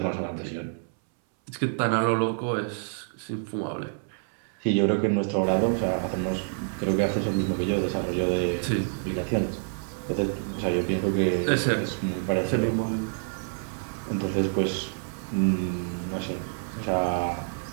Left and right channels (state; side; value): silent; left; 60 dB below the other